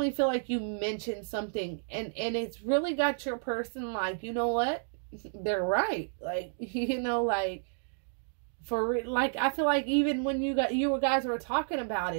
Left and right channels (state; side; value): silent; left; digital silence